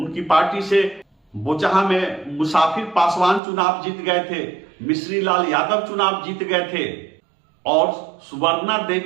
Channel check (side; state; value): left; drops out; at 3.4 s